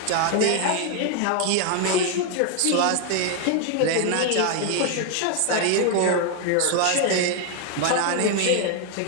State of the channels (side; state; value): both; different; correlation 0.00